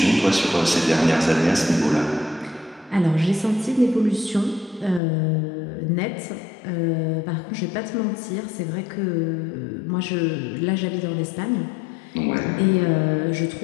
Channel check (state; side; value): drops out; right; at 5.0 s